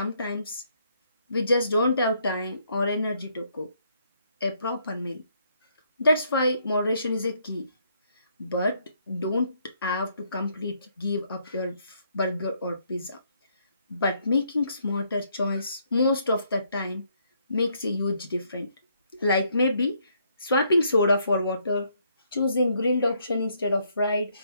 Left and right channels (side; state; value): both; inverted; correlation -0.71